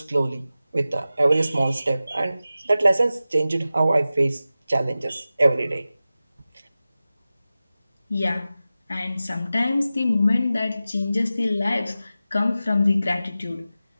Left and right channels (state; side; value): inverted; both; correlation -0.94